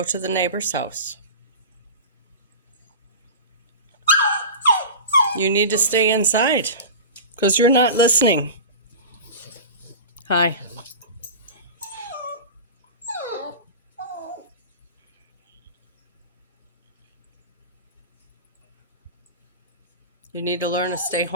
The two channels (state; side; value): inverted; both; correlation -0.31